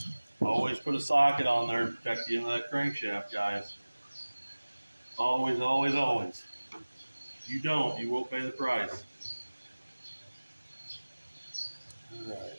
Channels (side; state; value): both; inverted; correlation -1.00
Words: Always put a socket on there to protect the end of that crankshaft, guys. Always, always, always. If you don't, you won't pay the price. All right.